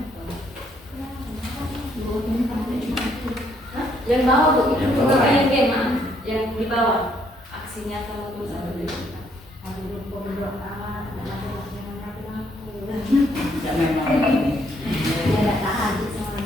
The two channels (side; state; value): both; normal; correlation 0.70